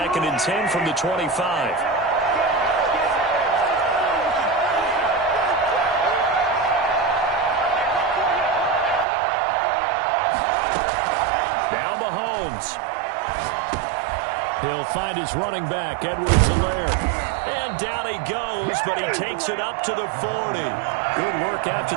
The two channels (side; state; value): left; drops out; at 9.1 s